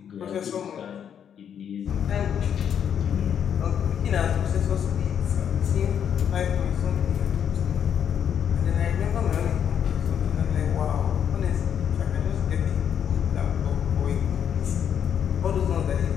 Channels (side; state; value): right; quieter; 8.5 dB